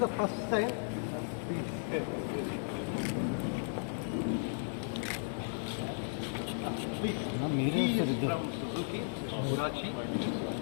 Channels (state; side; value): silent; right; digital silence